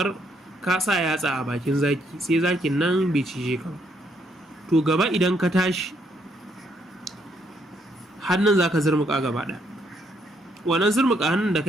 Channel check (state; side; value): normal; both; correlation 0.72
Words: ka sa yatsa a bakin zaki, sai zakin nan bai cije ka, to gaba idan ka tashi hannun za ka zurmuka gaba ɗaya. Wannan zurmuka hannun da